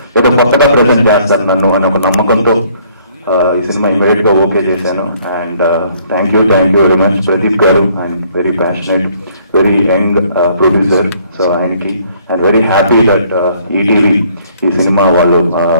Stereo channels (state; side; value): inverted; both; correlation -0.63